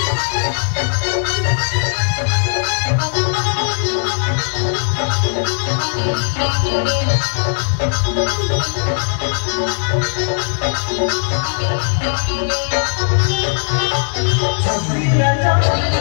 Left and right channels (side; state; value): right; silent; digital silence